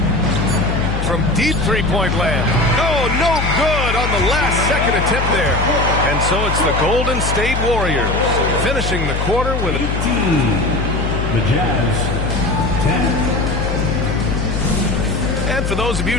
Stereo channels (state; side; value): noise; left; hum, 1 dB below the sound